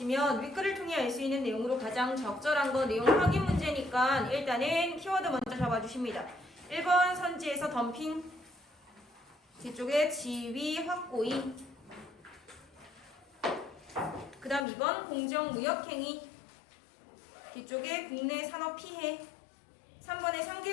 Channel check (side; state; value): right; drops out; at 14.7 s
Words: 윗글을 통해 알 수 있는 내용으로 가장 적절한 거 내용 확인 문제니까 일단은 키워드 먼저 잡아주십니다. 1번 선지에서 덤핑, 뒤쪽에 지위 확고히, 그 다음 2번 공정무역행위, 뒤쪽에 국내 산업 피해, 3번에